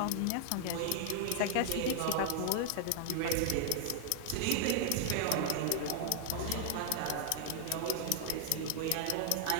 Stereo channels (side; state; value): both; different; correlation 0.00